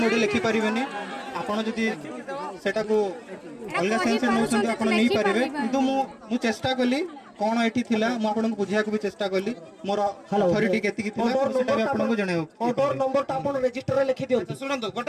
ଏଠି ଲେଖିପାରିବିନି। ଆପଣ ଯଦି ସେଟାକୁ ଅଲଗା ସେନ୍ସରେ ନେଉଛନ୍ତି ଆପଣ ନେଇପାରିବେ, କିନ୍ତୁ ମୁଁ ଚେଷ୍ଟା କଲି କଣ ଏଠି ଥିଲା ମୁଁ ଆପଣଙ୍କୁ ବୁଝିବାକୁ ବି ଚେଷ୍ଟା କଲି, ମୋର ଅଥରିଟି କେତିକି ଥିଲା ସେଟା ବି ଆପଣଙ୍କୁ ଜଣାଇବାକୁ। ଅର୍ଡର ନମ୍ବରଟା ଆପଣ ରେଜିଷ୍ଟରରେ ଲେଖି ଦିଅନ୍ତୁ। ଶୁଣନ୍ତୁ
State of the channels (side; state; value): both; identical; correlation 1.00